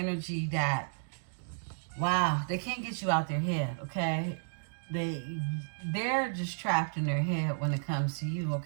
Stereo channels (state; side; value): silent; left; digital silence